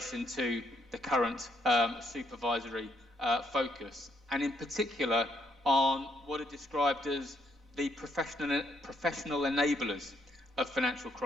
to the current supervisory focus, and in particular on what are described as the professional enablers of financial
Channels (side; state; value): both; normal; correlation 0.72